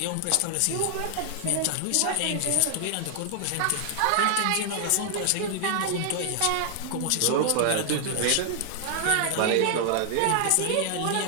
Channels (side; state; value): both; different; correlation 0.00